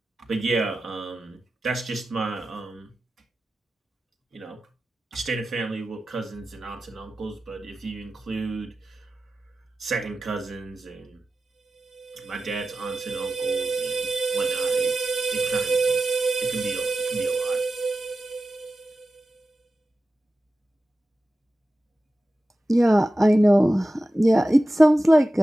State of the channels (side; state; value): both; normal; correlation 0.94